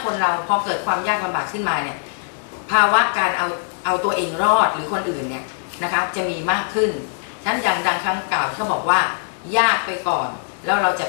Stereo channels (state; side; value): silent; right; digital silence